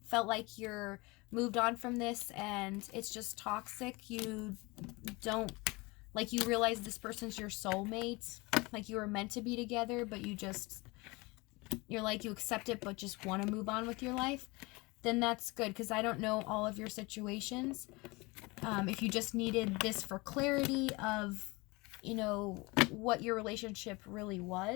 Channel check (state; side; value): quieter; right; 24.7 dB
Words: felt like you're moved on from this and it's just toxic, you realize this person's your soulmate, like you were meant to be together, but you accept it but just want to move on with your life, then that's good, because I don't know all of your situations. If you just needed this for clarity of, what your relationship really